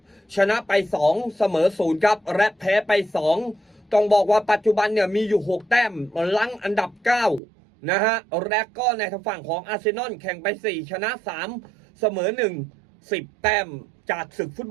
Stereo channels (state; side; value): drops out; left; at 7.4 s